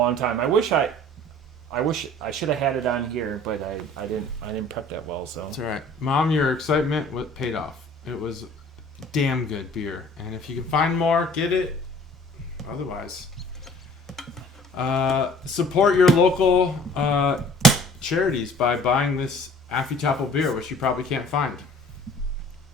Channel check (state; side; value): normal; both; correlation 0.51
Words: time. I wish I should have had it on here, but I didn't prep that well. So that's all right, Mom. Your excitement paid off. It was damn good beer, and if you can find more, get it. Otherwise, support your local charities by buying this Affy Tapple beer, which you probably can't find.